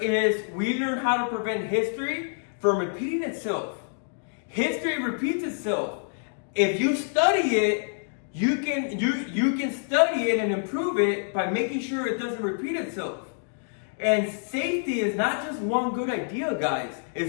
is we learn how to prevent history from repeating itself. History repeats itself. If you study it, you can study it and improve it by making sure it doesn't repeat itself. And safety is not just one good idea, guys.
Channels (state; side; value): silent; right; digital silence